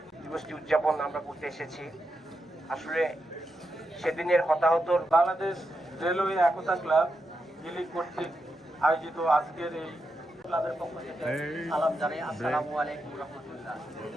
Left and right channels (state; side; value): normal; both; correlation 0.86